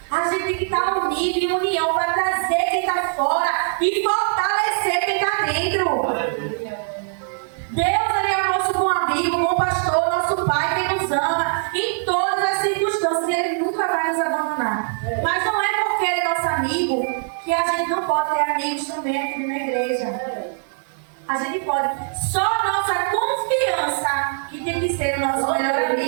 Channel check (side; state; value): left; silent; digital silence